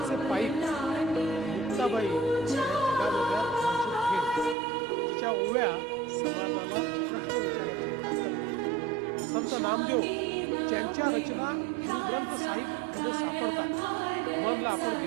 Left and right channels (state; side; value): drops out; left; at 4.5 s